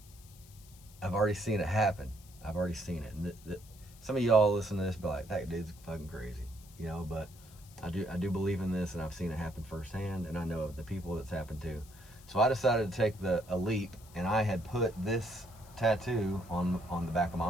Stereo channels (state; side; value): noise; left; hiss, 23 dB below the sound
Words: I've already seen it happen. I've already seen it. And some of y'all listen to this be like, that dude's fucking crazy, you know, but I do believe in this, and I've seen it happen firsthand, and I know of the people that's happened to. So I decided to take a leap, and I had put this tattoo on the back of my